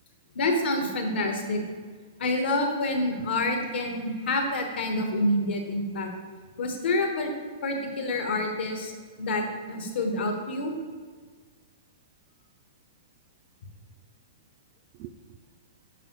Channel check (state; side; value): inverted; both; correlation -0.40